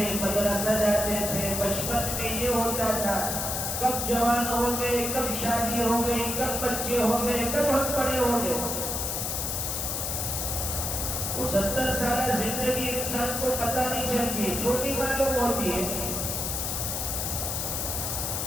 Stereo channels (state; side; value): noise; left; hiss, 1 dB below the sound